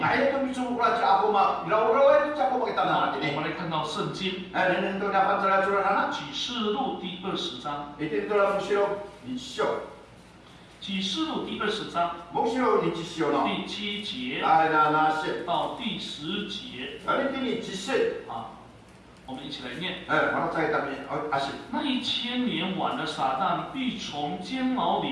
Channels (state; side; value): identical; both; correlation 1.00